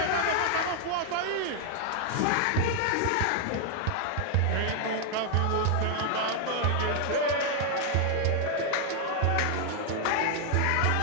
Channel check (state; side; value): different; both; correlation 0.00